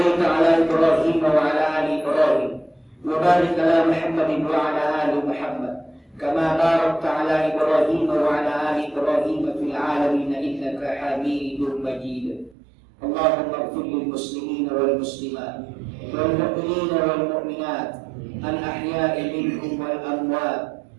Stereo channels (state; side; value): drops out; left; at 12.6 s